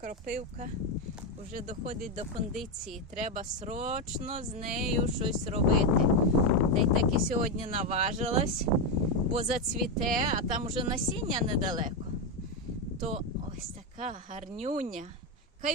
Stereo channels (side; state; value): both; normal; correlation 0.08